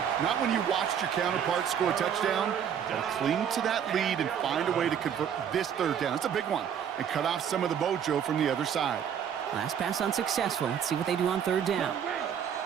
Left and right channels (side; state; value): left; quieter; 8.4 dB